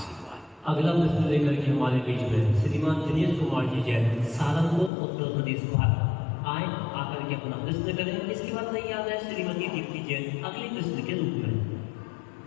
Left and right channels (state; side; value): drops out; right; at 4.9 s